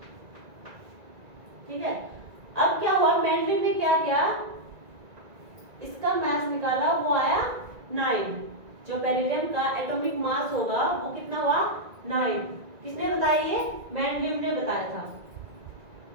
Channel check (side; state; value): left; late; 1.9 ms